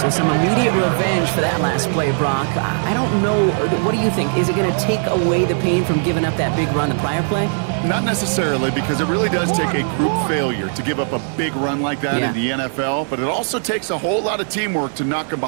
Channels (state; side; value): silent; left; digital silence